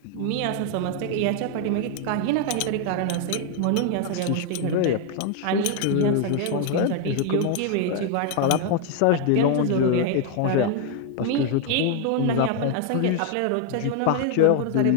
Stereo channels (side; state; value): both; different; correlation 0.00